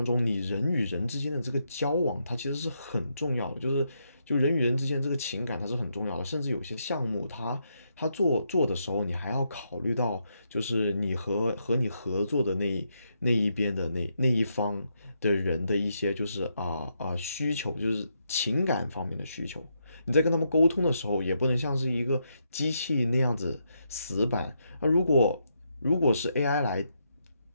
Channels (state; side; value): inverted; both; correlation -0.80